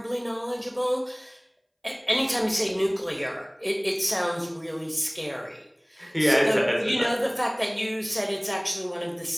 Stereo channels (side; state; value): both; identical; correlation 1.00